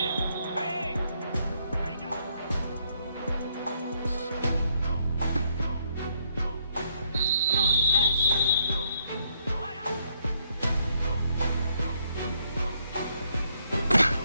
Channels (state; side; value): inverted; both; correlation -0.72